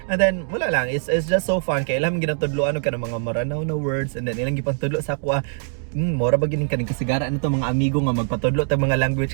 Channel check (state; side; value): silent; left; 64 dB below the other